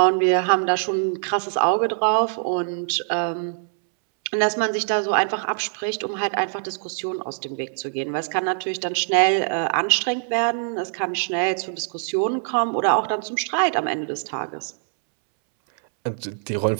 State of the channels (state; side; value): silent; left; 63 dB below the other